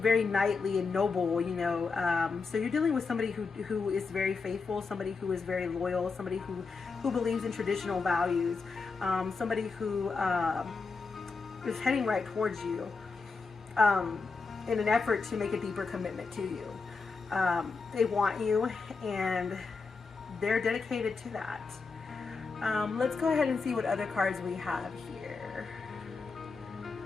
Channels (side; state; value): right; quieter; 4.5 dB